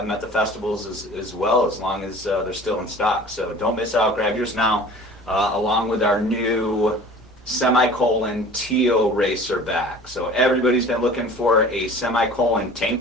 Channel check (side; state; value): both; normal; correlation 0.44